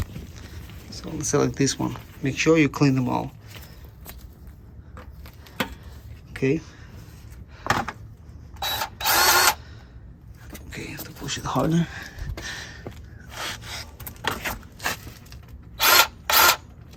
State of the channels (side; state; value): both; identical; correlation 1.00